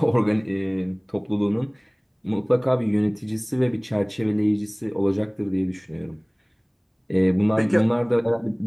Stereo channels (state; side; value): identical; both; correlation 1.00